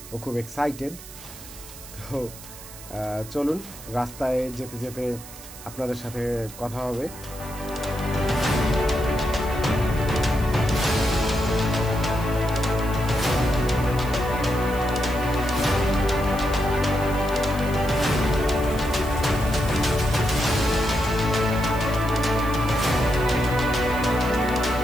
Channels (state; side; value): noise; right; hiss, 16 dB below the sound